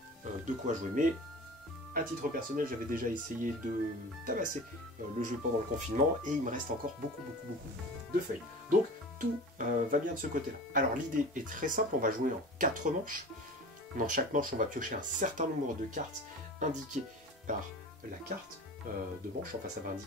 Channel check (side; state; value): both; normal; correlation 0.37